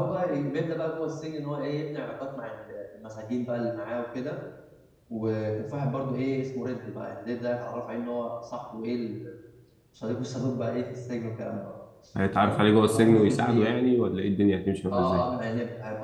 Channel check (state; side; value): identical; both; correlation 1.00